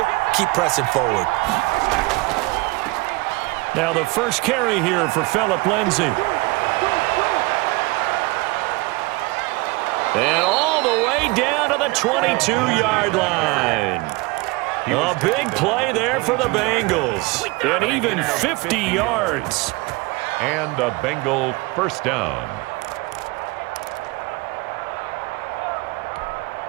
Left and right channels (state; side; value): quieter; left; 23.4 dB